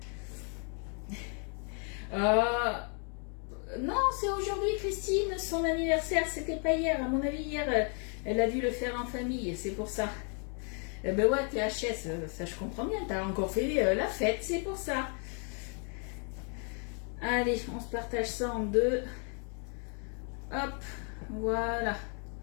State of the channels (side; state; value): right; quieter; 39.8 dB